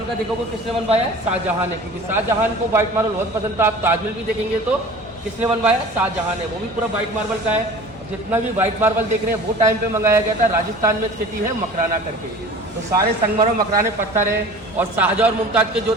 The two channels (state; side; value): normal; both; correlation 0.41